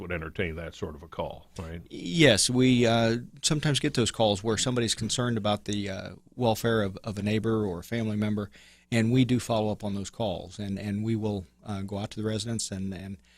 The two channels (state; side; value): identical; both; correlation 1.00